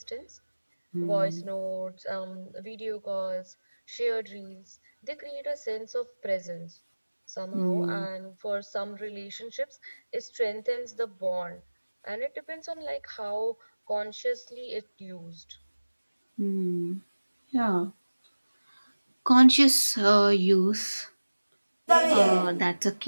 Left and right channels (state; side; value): inverted; both; correlation -1.00